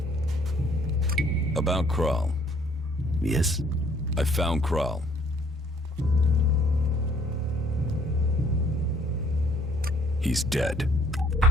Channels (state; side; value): normal; both; correlation 0.62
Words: About Kral. Yes? I found Kral. He's dead.